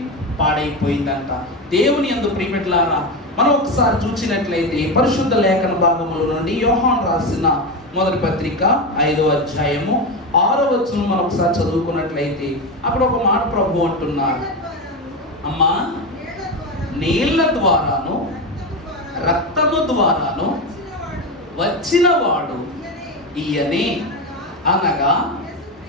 పాడైపోయిందంట. దేవుని యందు ప్రియబిడ్డలారా, మనం ఒకసారి చూసినట్లయితే పరిశుద్ధ లేఖన భాగముల నుండి యోహాను రాసిన మొదటి పత్రిక 5వ అధ్యాయము 6వ వచనం మనం ఒకసారి చదువుకున్నట్లయితే అక్కడ ఒక మాట ప్రభు అంటున్నారు, అమ్మా నీళ్ల ద్వారాను రక్తము ద్వారాను వచ్చిన వాడు ఈయనే, అనగా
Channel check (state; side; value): normal; both; correlation 0.17